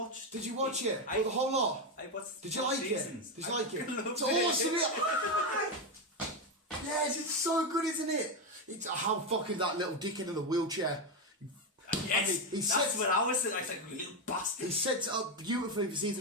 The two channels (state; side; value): normal; both; correlation 0.09